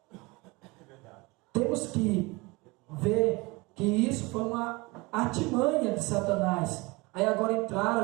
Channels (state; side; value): quieter; left; 24.6 dB